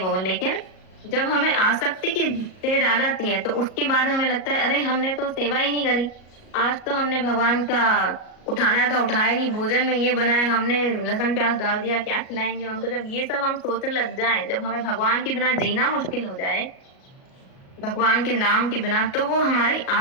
लेकिन जब हमें आसक्ति की स्टेज आ जाती है तो उसके बाद हमें लगता है अरे हमने तो सेवा ही नहीं करी, आज तो हमने भगवान का उठाना था उठाया नहीं, भोजन में ये बनाया, हमने लहसुन प्याज डाल दिया, क्या खिलाएंगे उनको, जब ये सब हम सोचने लग जाए, जब हमें भगवान के बिना जीना मुश्किल हो जाए, भगवान के नाम के बिना, तो वो हमारी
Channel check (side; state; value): right; late; 37 ms